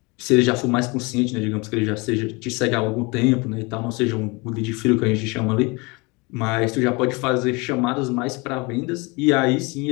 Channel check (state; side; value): quieter; right; 27.2 dB